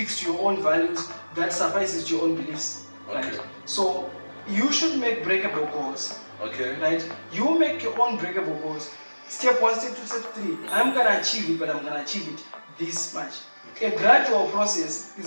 to your own values, that suffices to your own beliefs. Right. Okay. So you should make breakable goals. Okay. Right? You make your own breakable goals. Step 1, step 2, step 3. I'm gonna achieve it, but I'm gonna achieve it this much. A gradual process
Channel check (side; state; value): both; inverted; correlation -1.00